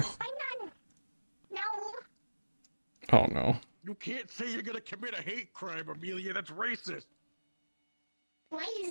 No, Oh no. You can't say you're gonna commit a hate crime, Amelia. That's racist. why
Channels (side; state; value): both; inverted; correlation -1.00